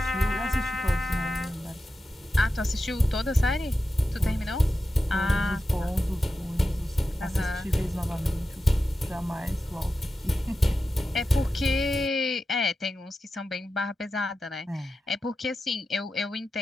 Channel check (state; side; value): normal; both; correlation 0.92